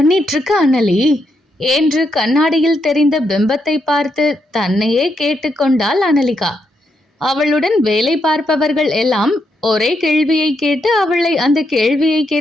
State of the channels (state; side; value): normal; both; correlation 0.80